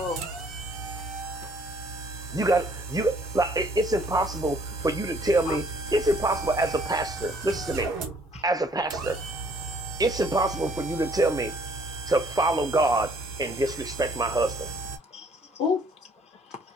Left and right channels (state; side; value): normal; both; correlation 0.61